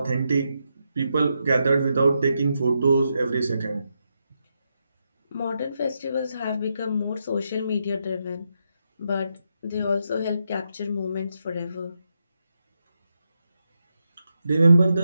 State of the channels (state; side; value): inverted; both; correlation -0.84